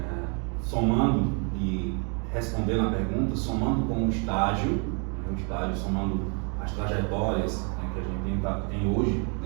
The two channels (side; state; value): left; quieter; 37.2 dB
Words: somando e respondendo a pergunta, somando com o estágio, somando as trajetórias, né, que a gente tem hoje,